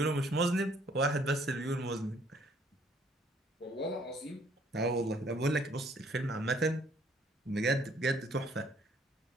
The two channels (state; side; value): normal; both; correlation 0.63